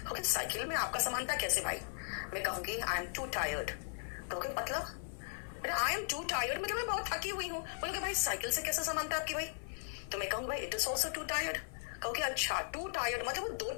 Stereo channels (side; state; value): right; silent; 53 dB below the other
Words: ओके साइकिल में आपका समानता कैसे भाई? मैं कहूंगी आई एम टू टायर्ड, कहोगे मतलब आई एम टू टायर्ड मतलब मैं बहुत थकी हुई हूं। बोलोगे भाई साइकिल से कैसे समानता आपकी भाई? तो मैं कहूंगी भाई it is also to tired. कहोगे अच्छा टू टायर्ड मतलब वो दो